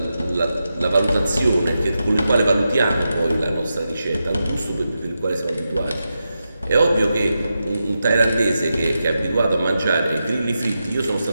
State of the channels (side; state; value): both; inverted; correlation -0.89